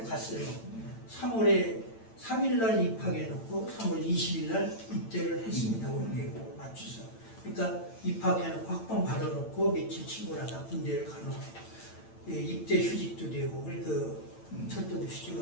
갔어요. 3월에 3일날 입학해놓고 3월 20일날 입대를 했습니다. 우리 맞춰서. 그러니까 입학해놓고 학번 받아놓고 며칠 친구랑 다 군대를 가놓고 입대 휴직도 되고 그 철도도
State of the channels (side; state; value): right; late; 8.9 ms